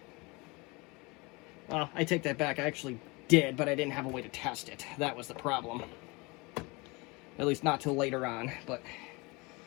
Well, I take that back. I actually did, but I didn't have a way to test it. That was the problem. At least not till later on. But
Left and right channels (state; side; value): quieter; right; 26.2 dB